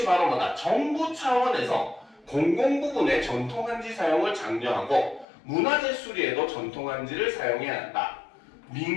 바로 뭐다? 정부 차원에서 공공부문의 전통 한지 사용을 장려하고 문화재 수리에도 전통 한지를 사용해야 한다.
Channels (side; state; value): right; drops out; at 5.2 s